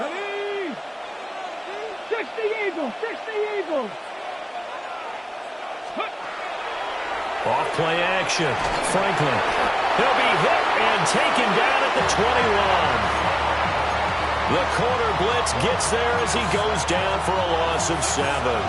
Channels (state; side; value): identical; both; correlation 1.00